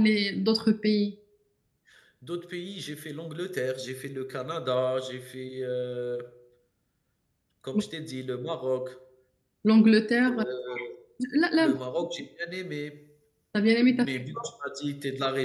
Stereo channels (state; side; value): identical; both; correlation 1.00